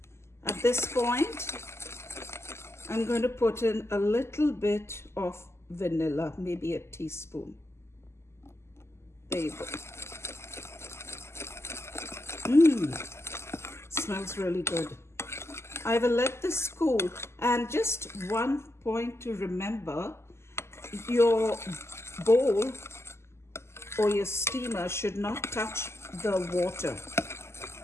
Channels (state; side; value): late; right; 0.13 ms